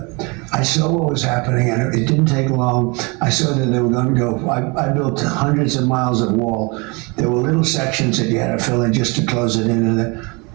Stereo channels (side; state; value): left; quieter; 28.9 dB